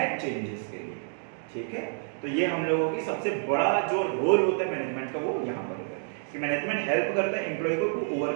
चेंजेस के लिए। ठीक है, तो ये हम लोगों की सबसे बड़ा जो रोल होता है मैनेजमेंट का वो यहाँ पर होता है कि मैनेजमेंट हेल्प करता है एम्प्लॉय को to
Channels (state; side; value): silent; left; 59 dB below the other